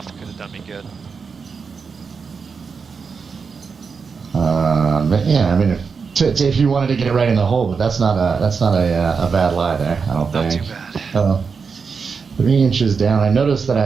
could have done me good. Yeah, I mean, if you wanted to get it right in the hole, but that's not a bad lie there. I don't Not think. too bad. 3 inches down. I noticed that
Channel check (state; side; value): quieter; left; 5.4 dB